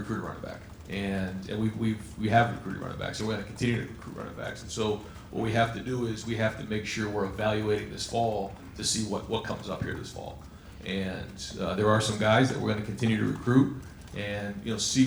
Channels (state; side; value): identical; both; correlation 1.00